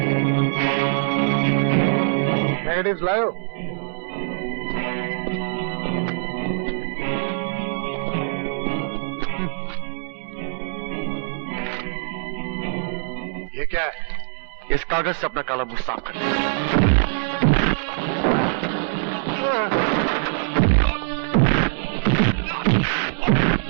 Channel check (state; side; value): silent; left; 63 dB below the other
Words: नेगेटिव्स लाओ। ये क्या है? इस कागज से अपना काला मुंह साफ कर।